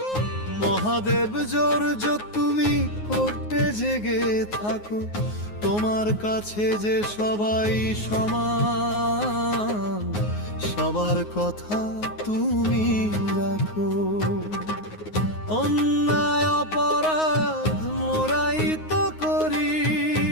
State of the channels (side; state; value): right; late; 9.5 ms